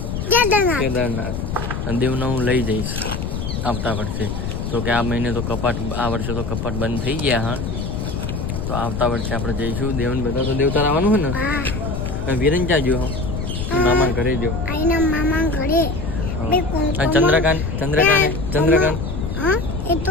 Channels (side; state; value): left; noise; rumble, 4 dB below the sound